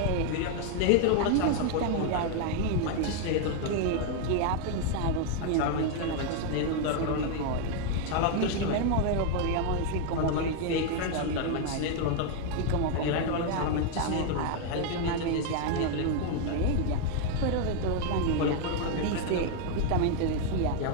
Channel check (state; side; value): different; both; correlation 0.00